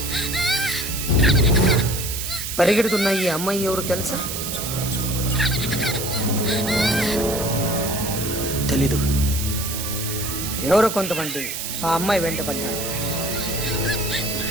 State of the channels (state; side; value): noise; right; hiss, 5 dB below the sound